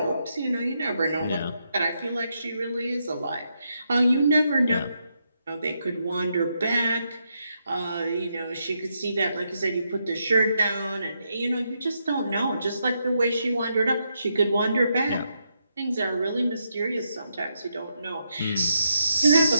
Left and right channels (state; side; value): inverted; both; correlation -0.81